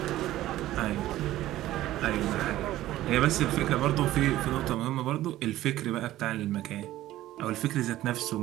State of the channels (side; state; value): left; quieter; 14.8 dB